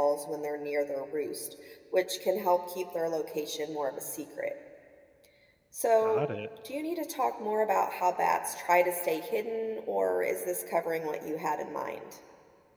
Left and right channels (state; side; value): identical; both; correlation 1.00